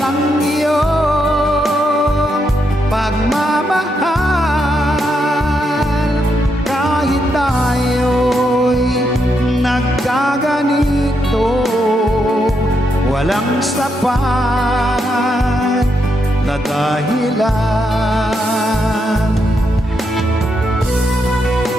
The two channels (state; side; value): normal; both; correlation 0.80